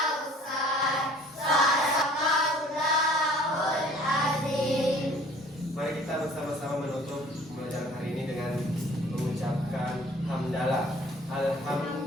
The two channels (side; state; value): both; normal; correlation 0.52